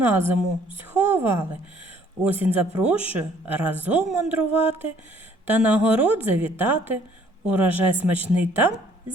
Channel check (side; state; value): both; normal; correlation 0.60